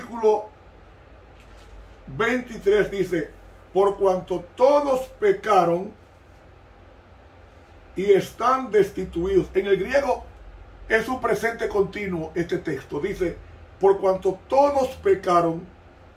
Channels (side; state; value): both; identical; correlation 1.00